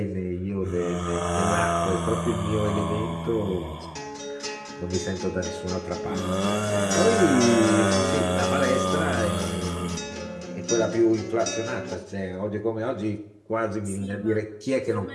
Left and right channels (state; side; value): identical; both; correlation 1.00